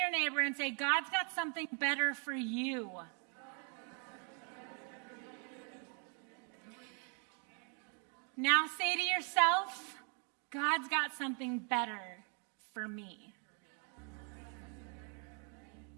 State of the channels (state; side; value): quieter; left; 39.8 dB